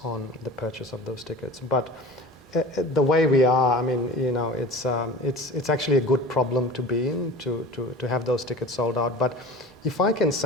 on the purchase of those tickets. But the way we are, I mean, you know, it's actually a good problem to be in, to have those tickets sold out. But if I can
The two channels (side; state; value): both; normal; correlation 0.38